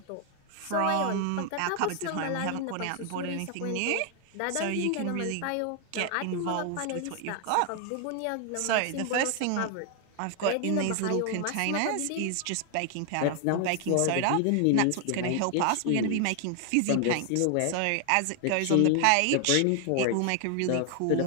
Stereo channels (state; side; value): different; both; correlation 0.00